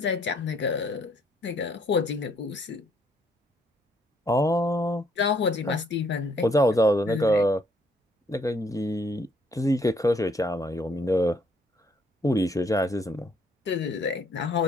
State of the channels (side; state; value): both; normal; correlation 0.67